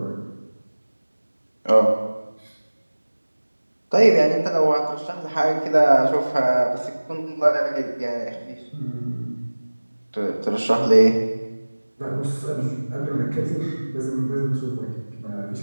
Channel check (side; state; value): both; inverted; correlation -1.00